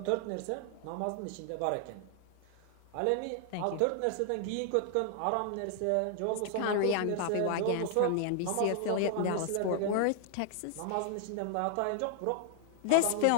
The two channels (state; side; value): different; both; correlation 0.00